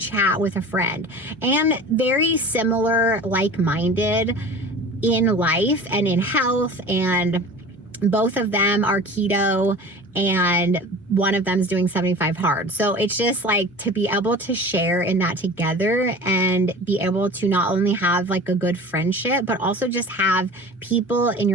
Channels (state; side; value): normal; both; correlation 0.39